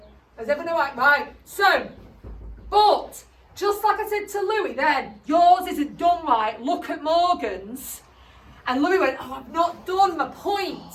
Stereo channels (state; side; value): identical; both; correlation 1.00